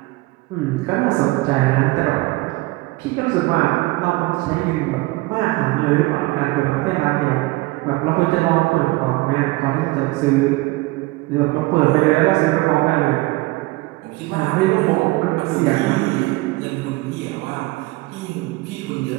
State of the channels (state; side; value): quieter; left; 21.3 dB